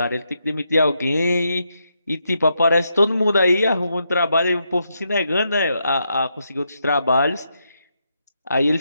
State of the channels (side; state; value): both; inverted; correlation -0.81